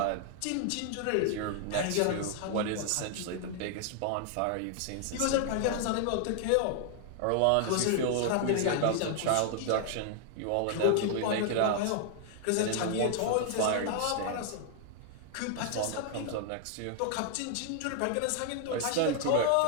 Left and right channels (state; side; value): different; both; correlation 0.00